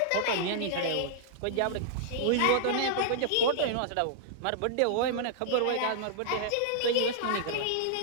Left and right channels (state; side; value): different; both; correlation -0.01